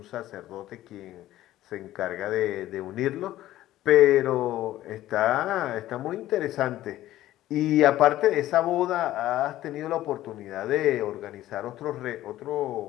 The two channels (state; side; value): quieter; right; 14.5 dB